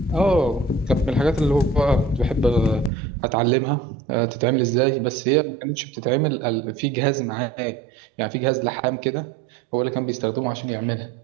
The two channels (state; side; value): drops out; left; at 2.9 s